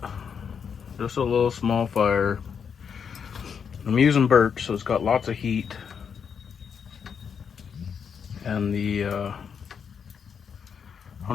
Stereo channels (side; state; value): right; quieter; 6.9 dB